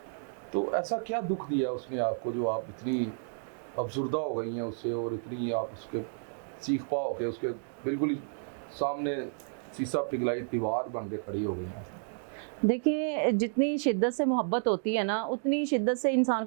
तो ऐसा क्या दुख दिया उसने आपको जो आप इतनी अफसुर्दा हो गई हैं उससे और इतनी आप उसके सीख पाओ के उसके बिल्कुल ही सामने शीशा पिघलाई दीवार बन के खड़ी हो गई हैं? देखिए, जितनी शिद्दत से मोहब्बत होती है ना, उतनी शिद्दत से इंसान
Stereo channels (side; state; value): left; silent; digital silence